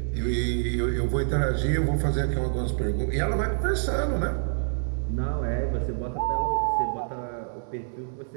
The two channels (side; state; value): left; silent; digital silence